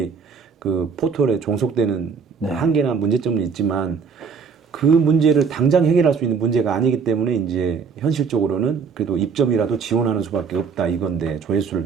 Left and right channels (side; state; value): left; quieter; 5.8 dB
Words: 그 포털에 종속되는 한계나 문제점은 있지만 그 문제를 당장 해결할 수 있는 문제가 아니기 때문에 이제 현실적으로는 그래도 입점이라도 지원하는 수밖에 없다 이건데